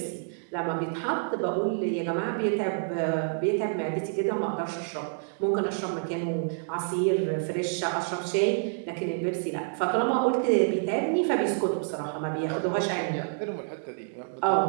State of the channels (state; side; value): silent; left; digital silence